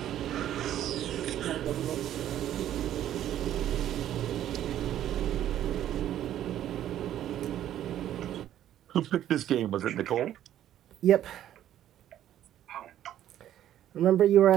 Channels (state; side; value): quieter; left; 11.6 dB